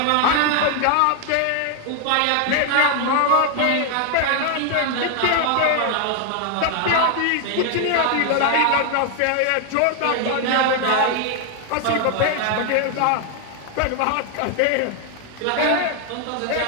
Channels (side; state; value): both; different; correlation 0.00